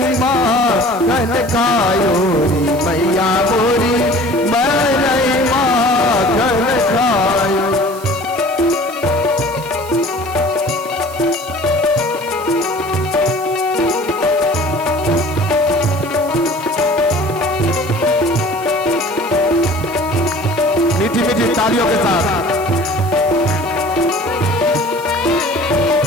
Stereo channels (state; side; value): noise; right; hiss, 17 dB below the sound